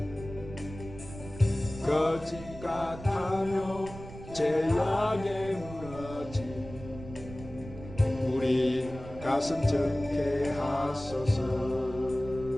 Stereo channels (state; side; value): noise; right; rumble, 14 dB below the sound